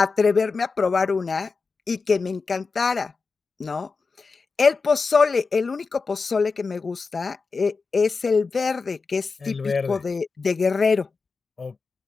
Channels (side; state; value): right; quieter; 4.5 dB